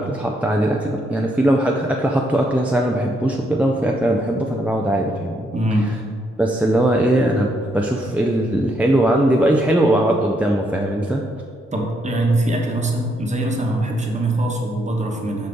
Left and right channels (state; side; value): normal; both; correlation 0.75